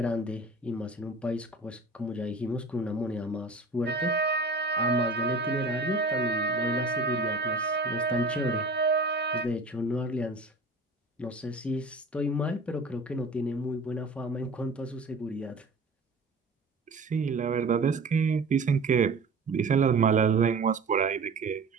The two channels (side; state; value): left; quieter; 3.1 dB